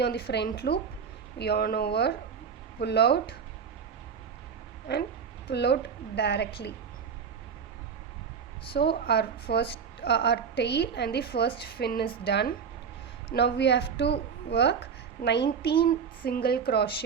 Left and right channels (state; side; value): quieter; left; 6.5 dB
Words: on the front loop. Yarn over, pull out and pull out directly. So our tail and the first fin is done. Now we have to work 19 single